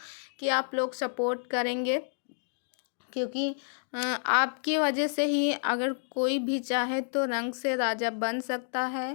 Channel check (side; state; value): right; silent; digital silence